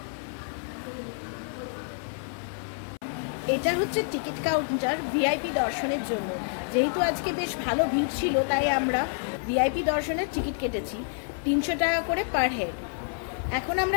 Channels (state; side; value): silent; right; 59 dB below the other